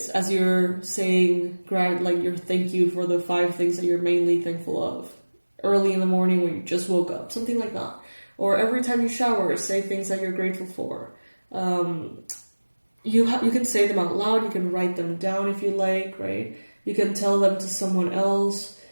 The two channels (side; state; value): both; inverted; correlation -1.00